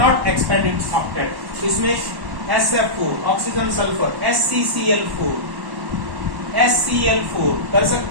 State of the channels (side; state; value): left; late; 1.1 ms